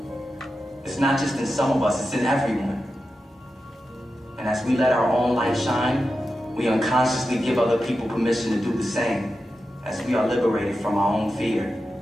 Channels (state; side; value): normal; both; correlation 0.91